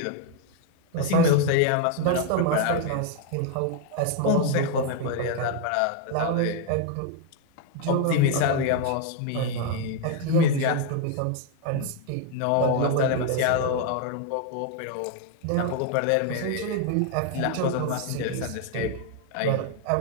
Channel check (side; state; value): both; different; correlation 0.01